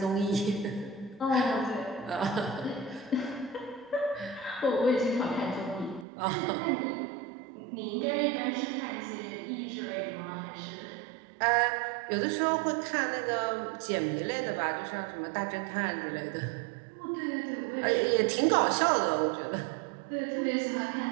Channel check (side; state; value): left; drops out; at 6.1 s